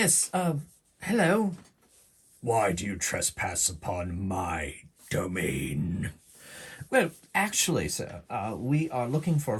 hello. Why do you trespass upon my domain? Well, Actually, sir, we are looking for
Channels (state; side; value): identical; both; correlation 1.00